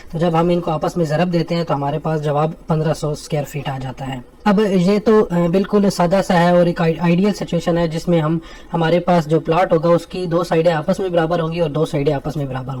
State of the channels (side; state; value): both; identical; correlation 1.00